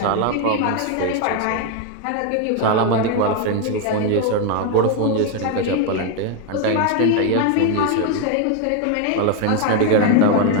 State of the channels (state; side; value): different; both; correlation 0.01